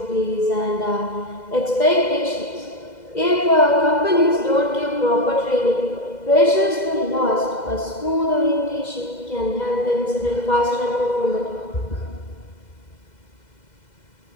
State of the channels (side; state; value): right; late; 2.0 ms